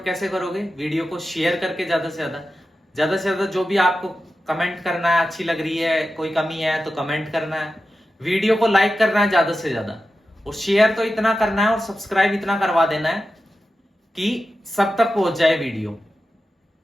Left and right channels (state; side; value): normal; both; correlation 0.92